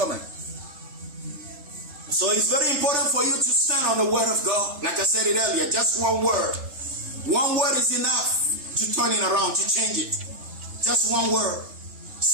So it's very important for you to stand on the word of God. Like I said it earlier, just one word. One word is enough to turn it around, to change it. Just one word.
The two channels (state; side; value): late; left; 3.3 ms